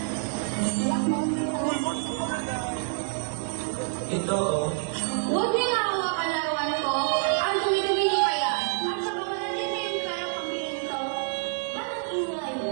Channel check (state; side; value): silent; left; digital silence